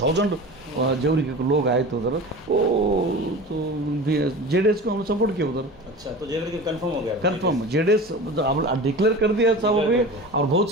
जेवरी के लोग आए थे उधर। वो तो JDS को हमने सपोर्ट किया उधर। अच्छा, तो जेवरी कंफर्म हो गया? कंफर्म, JDS डिक्लेयर कर दिया सब अभी, और बहुत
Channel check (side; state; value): both; normal; correlation 0.34